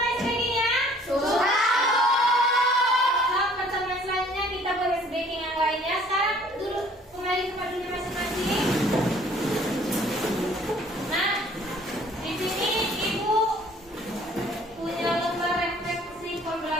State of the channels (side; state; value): both; normal; correlation 0.56